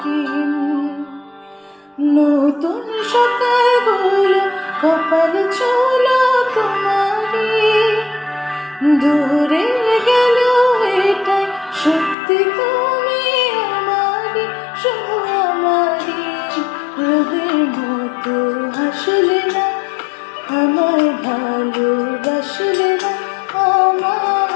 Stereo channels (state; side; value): drops out; right; at 12.2 s